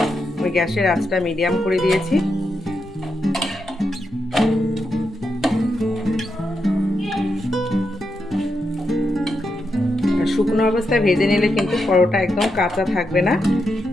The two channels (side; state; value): both; normal; correlation 0.84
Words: আমি গ্যাসের আঁচটা মিডিয়াম করে দিয়েছি। শুকনো অবস্থায় ভেজে নিলে কিন্তু পরোটা একদম কাঁচা থাকবে না।